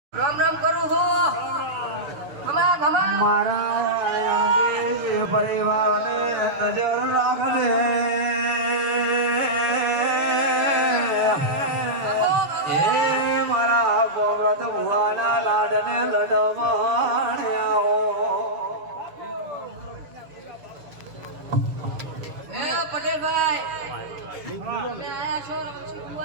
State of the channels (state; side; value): late; left; 6.7 ms